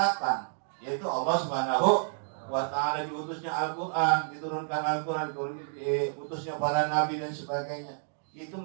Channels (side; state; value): left; silent; digital silence